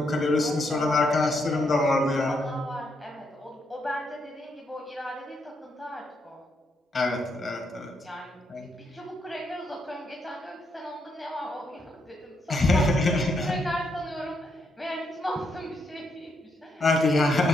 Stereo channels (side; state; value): both; normal; correlation 0.78